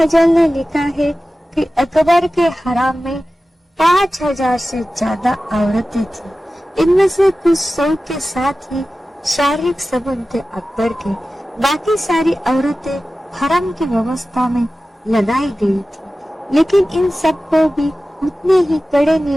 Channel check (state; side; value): normal; both; correlation 0.95